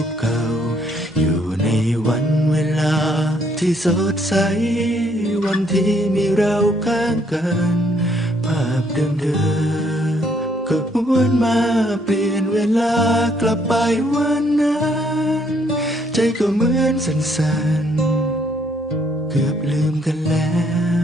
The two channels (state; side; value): normal; both; correlation 0.68